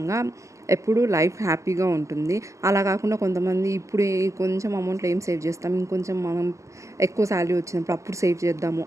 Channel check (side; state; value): left; late; 0.15 ms